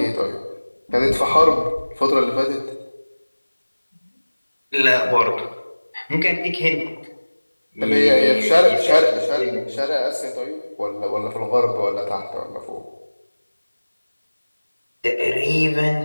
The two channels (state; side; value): inverted; both; correlation -1.00